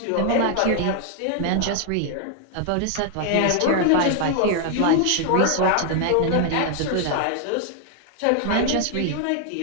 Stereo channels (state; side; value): different; both; correlation 0.00